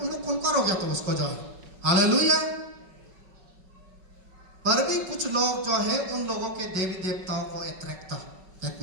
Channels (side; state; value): left; late; 5.3 ms